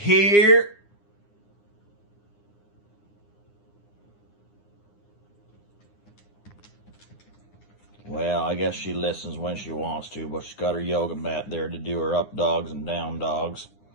Well, I guess she listens when she wants to, but she's got her yoga mat there to do her up dogs and down dogs.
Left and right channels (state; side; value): late; right; 9.8 ms